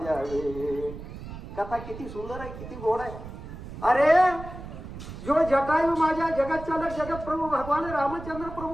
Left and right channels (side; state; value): right; noise; rumble, 11 dB below the sound